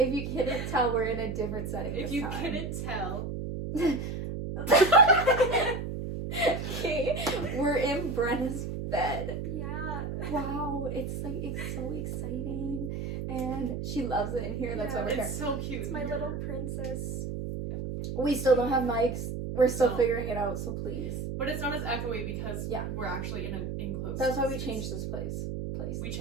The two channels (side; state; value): right; noise; hum, 4 dB below the sound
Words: you couldn't tell, we're in a different setting If this you time. couldn't tell. Okay, we're in Brenna's bed. Yeah. Wow, it's so exciting. And she loves it in here, that's why we're here. It's so cute. It's my little princess. We still don't have mics. We're still No. figuring it out, so please. But it's not as echoey because Yeah. we're actually in an enclosed That's why we space. changed this place. We